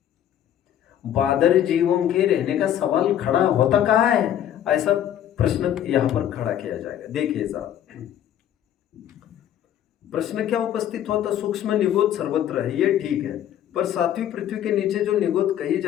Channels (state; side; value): quieter; right; 10.7 dB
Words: बादर जीवों के रहने का सवाल खड़ा होता कहाँ है? ऐसा प्रश्न यहां पर खड़ा किया जाएगा। देखिए साहब, प्रश्न क्या उपस्थित होता? सूक्ष्म निगोद सर्वत्र है, ये ठीक है, पर सातवीं पृथ्वी के नीचे जो निगोद कही